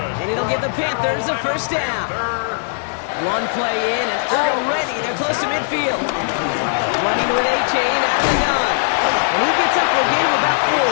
And it'll give the Panthers a 1st down. 1 play in, and already they're close to midfield. Running with A-Chain out of the gun. And he gets up for a gain of about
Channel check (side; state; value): right; silent; 59 dB below the other